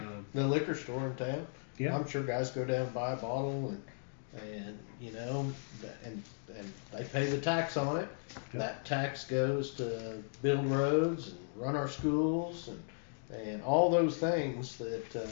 The liquor store in town. Yeah. I'm sure guys go down and buy a bottle and they pay the tax on it. Yeah. That tax goes to build roads and run our schools and all those things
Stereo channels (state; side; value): silent; right; digital silence